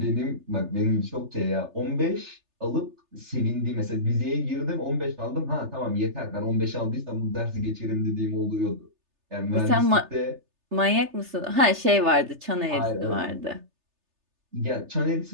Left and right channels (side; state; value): left; late; 3.3 ms